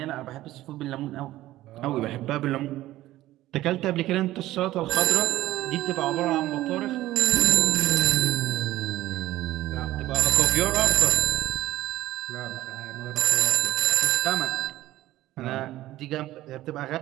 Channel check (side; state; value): left; quieter; 15.6 dB